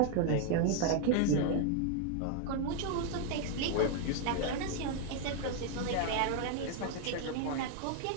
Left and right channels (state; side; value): different; both; correlation 0.00